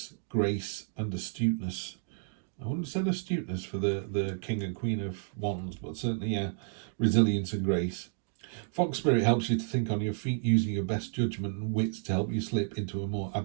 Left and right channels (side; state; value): left; silent; digital silence